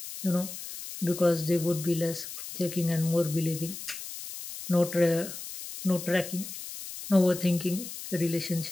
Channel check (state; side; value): noise; left; hiss, 10 dB below the sound